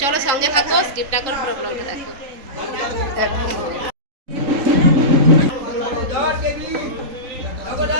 চলো সঙ্গে থাকো, স্কিপ না করে পুরো ব্লগটা দেখো।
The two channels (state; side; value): late; left; 3.7 ms